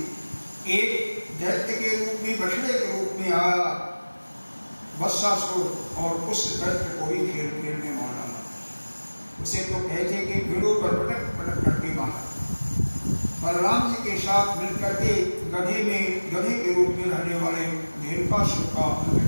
एक दैत्य के रूप में, बछड़े के रूप में आया वत्सासुर और उस दैत्य को भी खेल खेल में मार डाला। उसे तो कहते कि पेड़ों पर पटक करके मारा। बलराम जी के साथ मिलकर के गधे के रूप में रहने वाले धेनुकासुर का अंत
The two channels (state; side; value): inverted; both; correlation -1.00